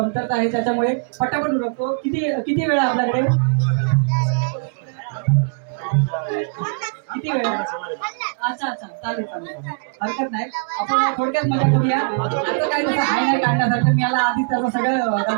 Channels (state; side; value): quieter; left; 37.7 dB